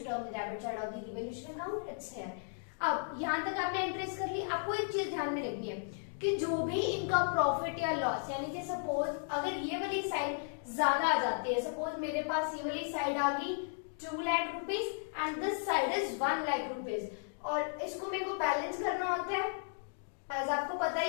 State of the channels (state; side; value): silent; right; digital silence